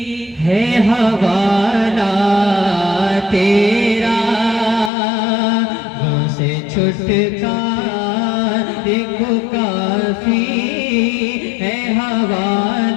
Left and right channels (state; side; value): drops out; right; at 4.9 s